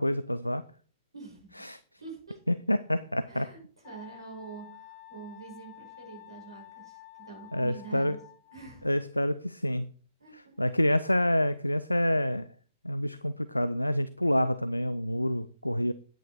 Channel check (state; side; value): inverted; both; correlation -0.96